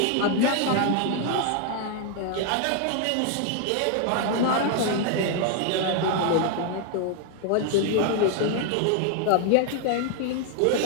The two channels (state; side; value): different; both; correlation 0.00